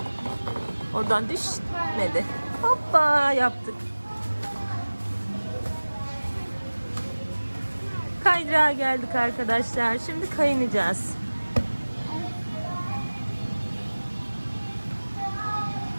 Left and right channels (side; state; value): both; inverted; correlation -1.00